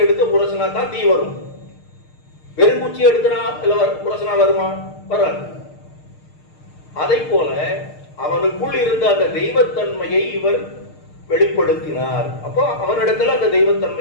எடுத்து உரசனா தான் தீ வரும். வெறுங்குச்சியை எடுத்தனா இல்ல உரசனா வருமா? வராது. அதை போல அவனுக்குள் இருந்த அந்த தெய்வத்தன்மையை இவர் வெளிப்படுத்தினார். அப்போ அவனிடத்துல அந்த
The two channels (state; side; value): late; right; 6.6 ms